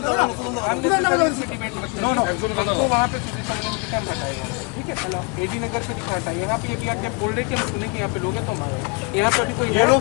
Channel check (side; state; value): right; quieter; 29.6 dB